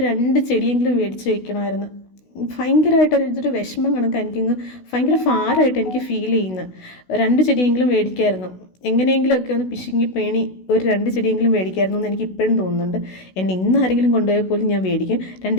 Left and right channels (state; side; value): late; right; 16 ms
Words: 2 ചെടിയെങ്കിലും മേടിച്ച് വയ്ക്കണമായിരുന്നു. ഭയങ്കരമായിട്ടൊരു വിഷമം കണക്ക് എനിക്കിങ്ങ് ഭയങ്കര ഭാരമായിട്ട് എനിക്ക് ഫീൽ ചെയ്യുന്നത്. 2 ചെടിയെങ്കിലും മേടിക്കായിരുന്നു. എങ്ങനെയെങ്കിലുമൊക്കെ ഒന്ന് പിശുങ്ങി പേണി ഒരു 2 ചെടിയെങ്കിലും മേടിക്കായിരുന്നു എന്ന് എനിക്ക് ഇപ്പോഴും തോന്നുന്നുണ്ട്. എന്നെ ഇന്ന് ആരെങ്കിലും കൊണ്ടുപോയാൽ പോലും ഞാൻ മേടിക്കും.